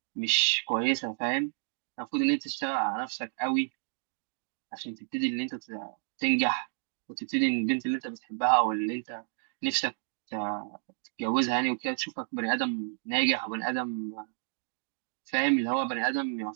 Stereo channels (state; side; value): silent; left; digital silence